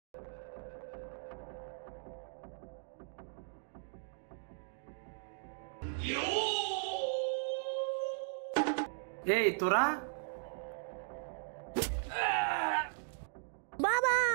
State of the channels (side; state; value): left; silent; digital silence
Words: এই তোরা, বাবা